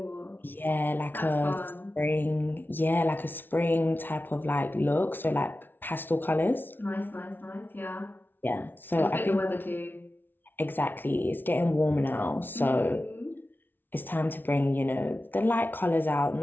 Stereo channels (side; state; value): right; late; 0.096 ms